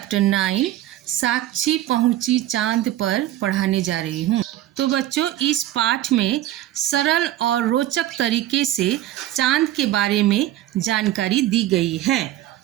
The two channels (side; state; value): left; quieter; 13.9 dB